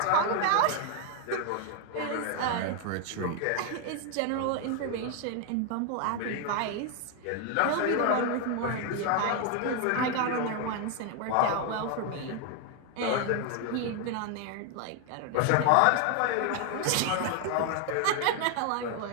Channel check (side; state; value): both; different; correlation 0.00